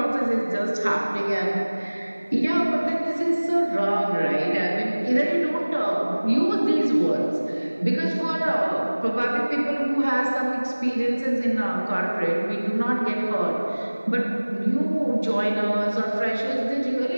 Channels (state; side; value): inverted; both; correlation -1.00